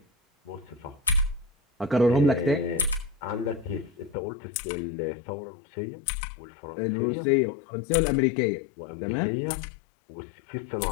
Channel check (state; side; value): drops out; right; at 4.2 s